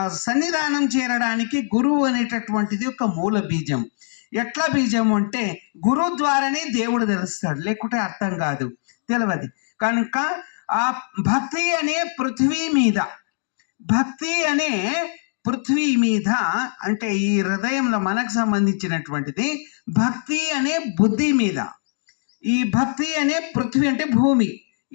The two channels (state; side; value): silent; right; digital silence